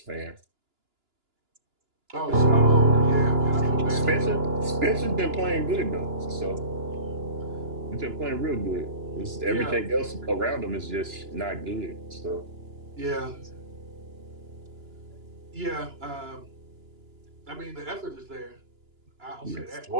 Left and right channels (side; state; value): left; late; 2.9 ms